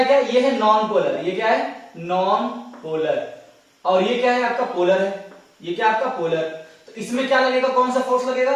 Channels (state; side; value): identical; both; correlation 1.00